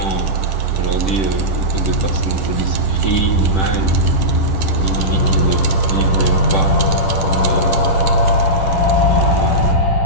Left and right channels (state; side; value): late; right; 10 ms